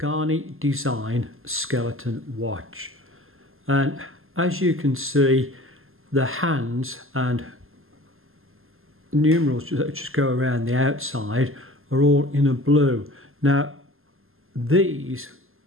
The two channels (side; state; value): left; late; 0.61 ms